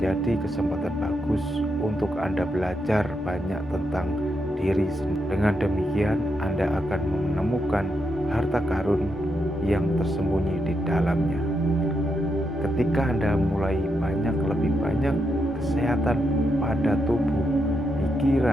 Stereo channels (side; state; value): both; normal; correlation 0.82